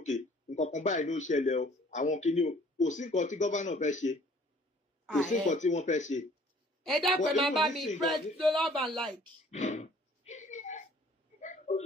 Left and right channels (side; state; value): both; normal; correlation 0.55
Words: nǹkan kan báyìí ló ṣẹlẹ̀ o àwọn kìíní o kò sí nǹkan tí governor fẹ́ ṣe kò sí nǹkan tí wọ́n fẹ́ ṣe. Ẹ dápẹ́ máa bá mi press love and like.